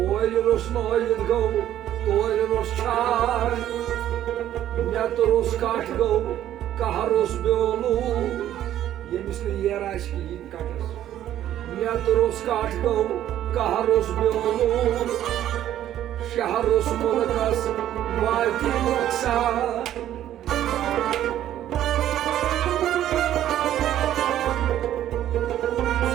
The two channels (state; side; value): quieter; left; 12.0 dB